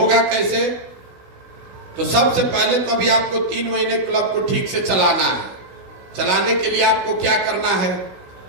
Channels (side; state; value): left; late; 16 ms